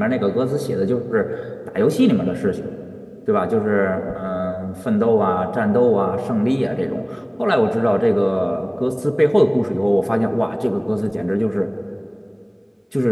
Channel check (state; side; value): identical; both; correlation 1.00